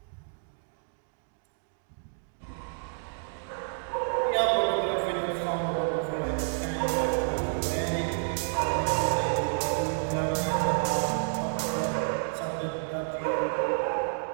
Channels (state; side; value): silent; left; digital silence